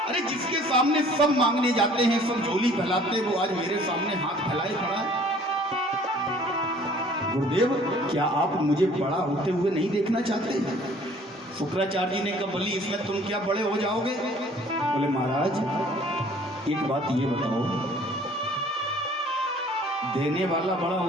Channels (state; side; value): normal; both; correlation 0.54